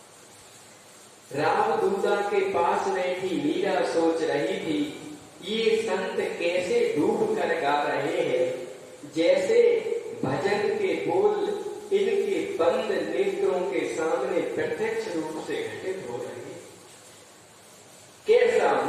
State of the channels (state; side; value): identical; both; correlation 1.00